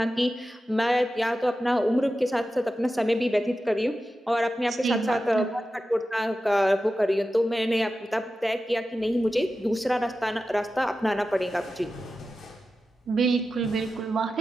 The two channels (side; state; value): both; normal; correlation 0.92